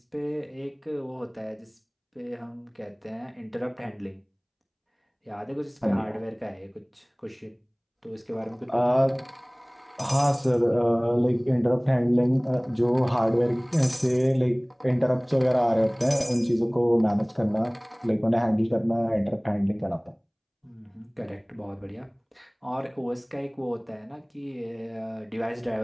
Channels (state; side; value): identical; both; correlation 1.00